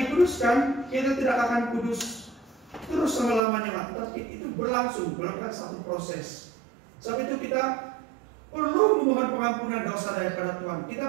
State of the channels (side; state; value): left; drops out; at 3.4 s